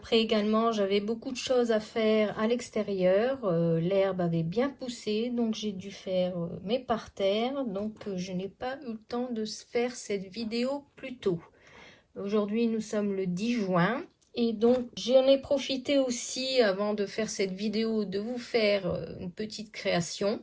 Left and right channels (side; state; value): both; identical; correlation 1.00